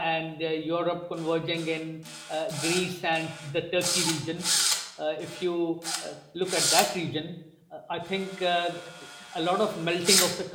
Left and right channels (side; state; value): both; identical; correlation 1.00